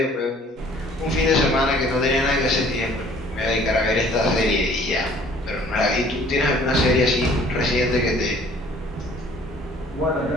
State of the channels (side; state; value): both; normal; correlation 0.55